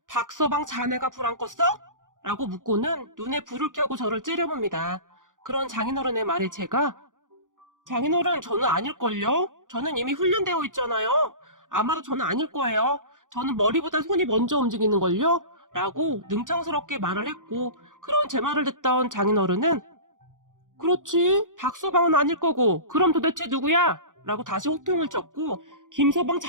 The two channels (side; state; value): left; late; 0.88 ms